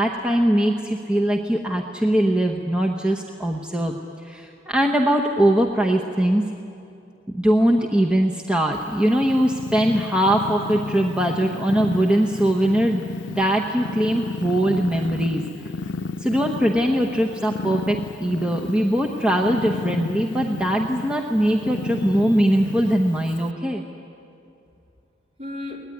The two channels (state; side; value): normal; both; correlation 0.87